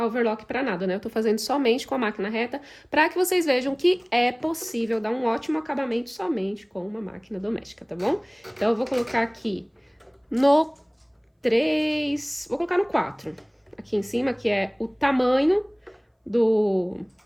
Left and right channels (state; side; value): identical; both; correlation 1.00